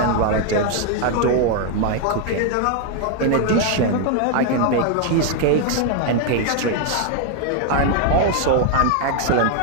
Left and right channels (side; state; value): both; different; correlation 0.01